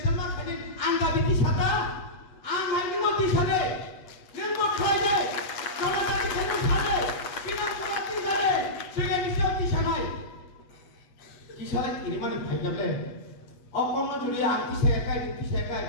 ma khani anga biti sata ang haini moti sade nemo khaibe kala ta khani sade pina kolati sade sege nisoti sanai kisale ini mani bhai jable অকর্ণ যদি আংটি শেখায়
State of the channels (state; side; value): late; right; 8.3 ms